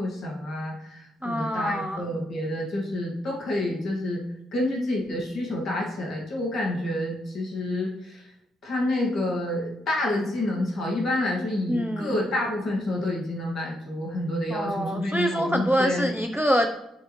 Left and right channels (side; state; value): both; normal; correlation 0.79